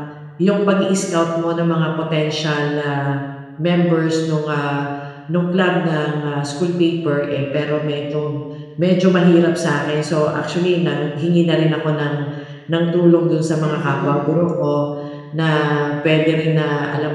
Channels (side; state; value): both; identical; correlation 1.00